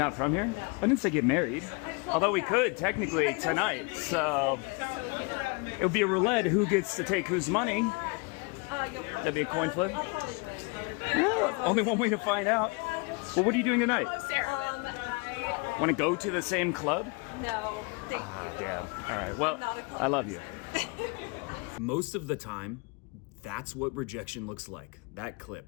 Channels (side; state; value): right; quieter; 30.7 dB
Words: from here? No. I didn't say get married. Although we could technically tonight, so So, it would be a roulette. Who gets to take whose money? you'll probably. That'd be a coin flip? I'll probably win. Well, only one way to find out. Well, what are you doing tonight? I Want to go to the same club? no, thank you. Damn. All right. Well, Not a club I love you. person. Most of the time, that's what rejection looks like. That